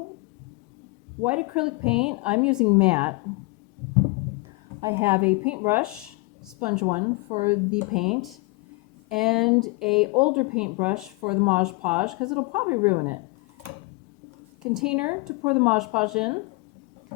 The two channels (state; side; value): quieter; right; 26.1 dB